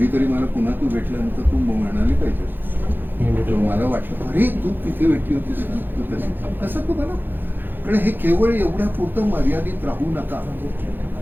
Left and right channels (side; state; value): left; late; 0.095 ms